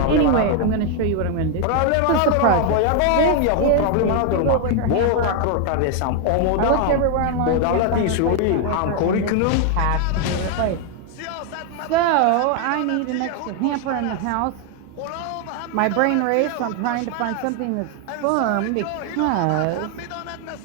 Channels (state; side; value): different; both; correlation 0.01